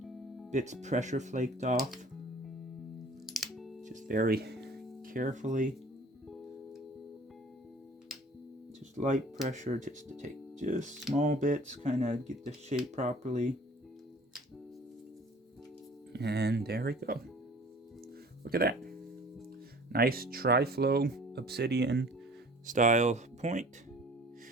bits pressure flaked off. Just very carefully. Just light pressure, just to take just small bits, kind of get the shape properly. And there we go. Look at that. Nice Triflow Obsidian style point.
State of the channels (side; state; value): both; normal; correlation 0.48